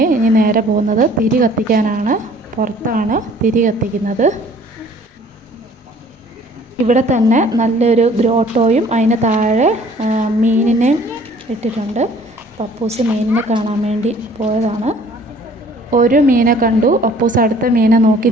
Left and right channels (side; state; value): both; normal; correlation 0.54